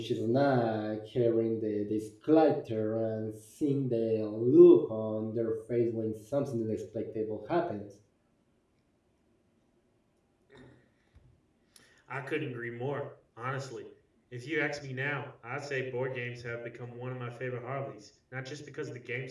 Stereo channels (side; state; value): both; identical; correlation 1.00